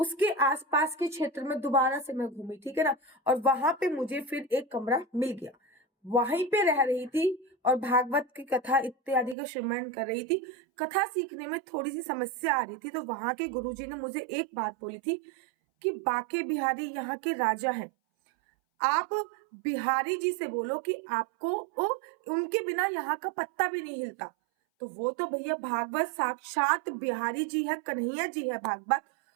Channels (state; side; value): drops out; left; at 9.3 s